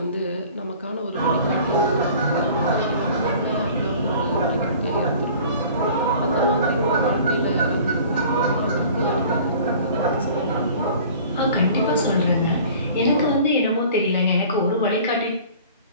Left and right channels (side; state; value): both; inverted; correlation -0.46